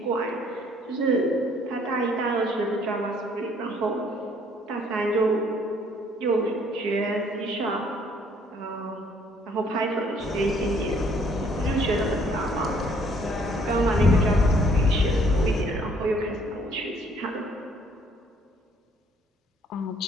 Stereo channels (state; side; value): normal; both; correlation 0.62